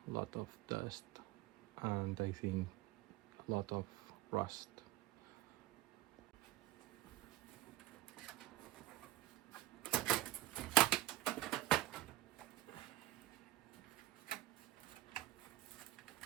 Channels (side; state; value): left; quieter; 15.6 dB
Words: a lot of dust and I think a lot of rust.